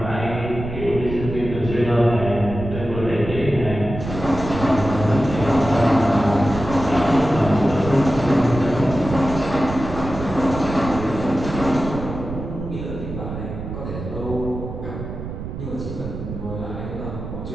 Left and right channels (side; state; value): right; noise; rumble, 8 dB below the sound